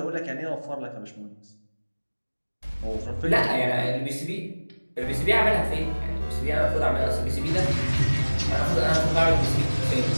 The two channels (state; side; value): inverted; both; correlation -1.00